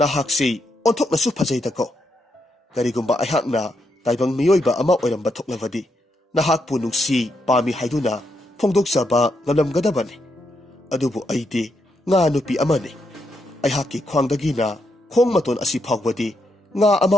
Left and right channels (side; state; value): both; normal; correlation 0.80